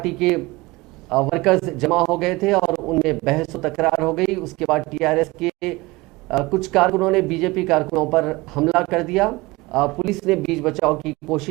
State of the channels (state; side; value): quieter; left; 22.0 dB